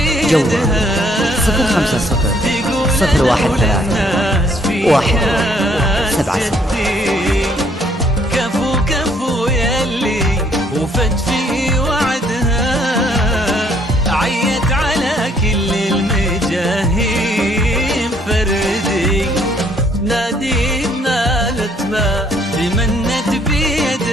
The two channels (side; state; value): both; normal; correlation 0.65